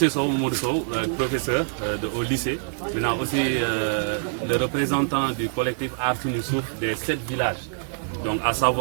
Sow, Mamadou Sow, professeur au lycée. Maintenant aussi le représentant du collectif Artoun Youssouf des 7 villages. Donc à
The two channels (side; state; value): left; silent; digital silence